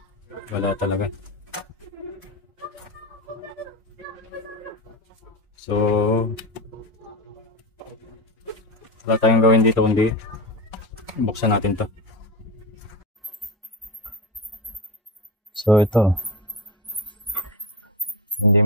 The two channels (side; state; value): both; normal; correlation 0.21